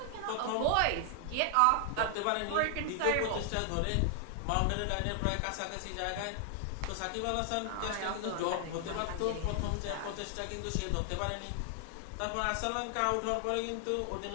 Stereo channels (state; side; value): different; both; correlation 0.00